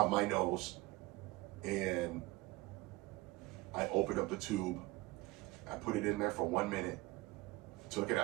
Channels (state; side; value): quieter; left; 21.2 dB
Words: my nose and I open up the tube, I put it in there for 1 minute, took it